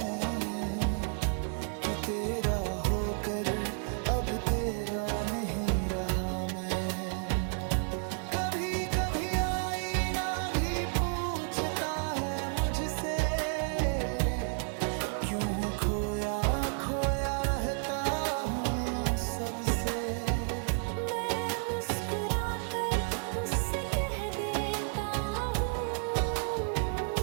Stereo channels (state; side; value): silent; left; 57 dB below the other